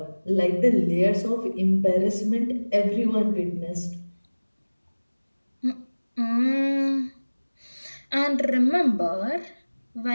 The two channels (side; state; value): both; inverted; correlation -1.00